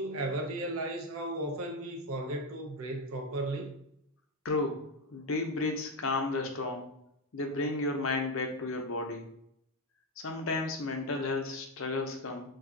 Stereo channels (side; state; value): both; normal; correlation 0.09